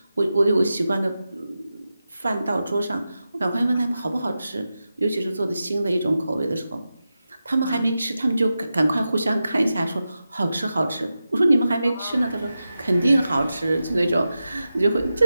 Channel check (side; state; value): both; inverted; correlation -0.91